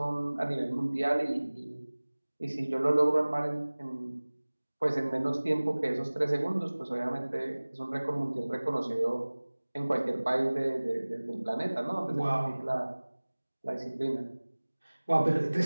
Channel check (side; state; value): both; inverted; correlation -1.00